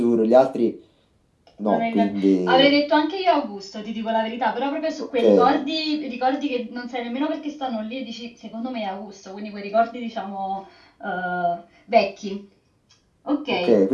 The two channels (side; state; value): both; identical; correlation 1.00